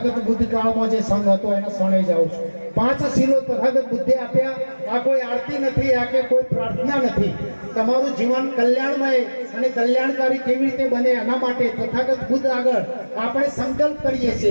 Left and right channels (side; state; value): both; inverted; correlation -1.00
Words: બુદ્ધ કાળમાં જે સંઘ હતો એના શરણે જાઉં છું. 5 શીલો તથાગત બુદ્ધે આપ્યા. આ કોઈ આરતી નથી, આ કે કોઈ પ્રાર્થના નથી. તમારું જીવન કલ્યાણમય અને કલ્યાણકારી કેવી રીતે બને એના માટે તથાગત બુદ્ધ આગળ આપણે સંકલ્પ કરીએ